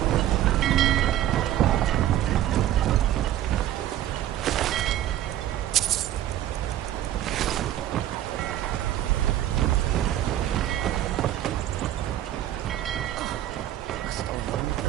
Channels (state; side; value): quieter; left; 12.6 dB